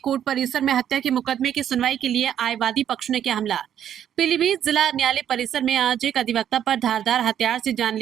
परिसर में हत्या के मुकदमे की सुनवाई के लिए आए वादी पक्ष ने किया हमला। पीलीभीत जिला न्यायालय परिसर में आज एक अधिवक्ता पर धारदार हथियार से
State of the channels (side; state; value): left; quieter; 9.9 dB